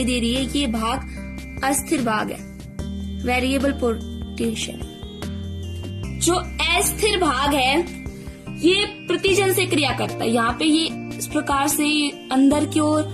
दे रही है, ये भाग अस्थिर भाग है, वेरिएबल पोटेंशियल। जो अस्थिर भाग है ये प्रतिजन से क्रिया करता है। यहाँ पे ये इस प्रकार से अंदर की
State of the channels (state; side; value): identical; both; correlation 1.00